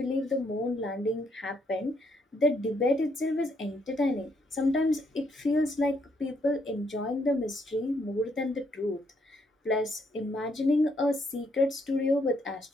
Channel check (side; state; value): both; normal; correlation 0.73